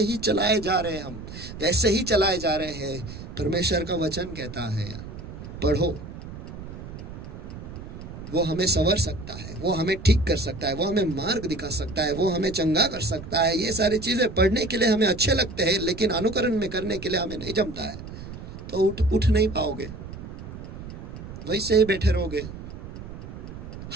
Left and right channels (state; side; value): noise; right; rumble, 11 dB below the sound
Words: ही चलाए जा रहे हैं, हम वैसे ही चलाए जा रहे हैं। परमेश्वर का वचन कहता है पढ़ो, वो हमें संवर सकता है, वो हमें ठीक कर सकता है, वो हमें मार्ग दिखा सकता है, वो हमें चंगा कर सकता है। ये सारी चीजें पढ़ने के लिए हमें अच्छे लगते हैं, लेकिन अनुकरण में करने के लिए हमें नहीं जमता है। तो उठ नहीं पाओगे, वैसे ही बैठे रहोगे।